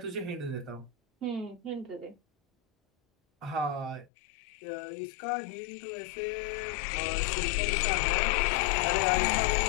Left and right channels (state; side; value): drops out; right; at 4.0 s